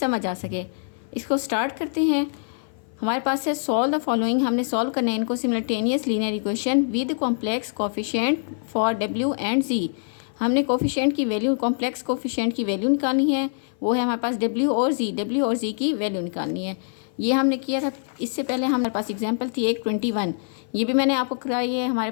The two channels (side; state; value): right; silent; 57 dB below the other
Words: आ सके। इसको स्टार्ट करते हैं। हमारे पास है सॉल्व द फॉलोइंग। हमने सॉल्व करना है इनको simultaneous linear equation with complex coefficient for W and Z. हमने कोफिशिएंट की वैल्यू, कॉम्प्लेक्स कोफिशिएंट की वैल्यू निकालनी है। वो है हमारे पास डब्ल्यू और जी की वैल्यू निकालनी है। ये हमने किया था। इससे पहले हमारे पास एग्जाम्पल थी एक 21। ये भी मैंने आपको कराई